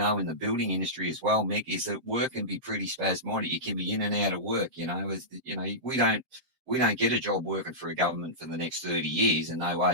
in the building industry as well, Mick, is that work can be pretty spasmodic. You can be in and out of work. We don't get a job working for a government for the next 30 years, and no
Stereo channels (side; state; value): left; late; 7.6 ms